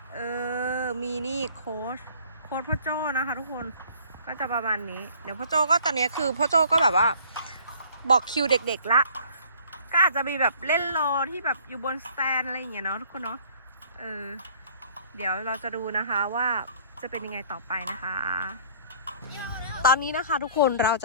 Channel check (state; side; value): inverted; both; correlation -0.55